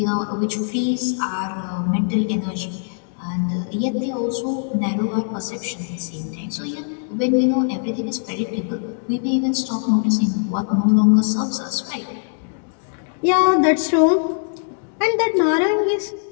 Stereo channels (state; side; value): silent; right; digital silence